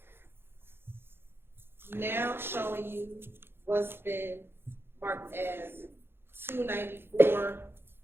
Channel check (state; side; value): late; left; 0.11 ms